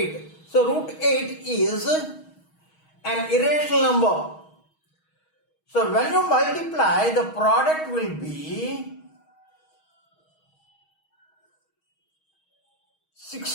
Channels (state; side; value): late; right; 6.3 ms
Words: So root 8 is an irrational number. So when you multiply, the product will be